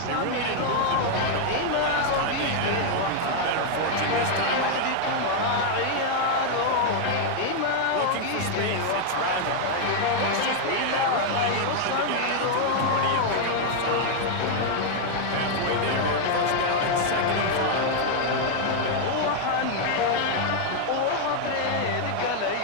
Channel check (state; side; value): different; both; correlation 0.00